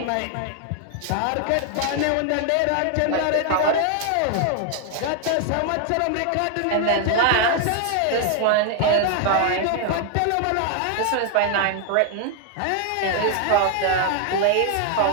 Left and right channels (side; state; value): both; different; correlation 0.00